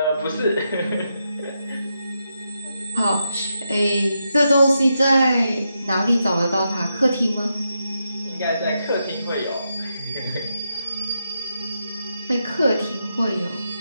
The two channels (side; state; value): both; inverted; correlation -0.84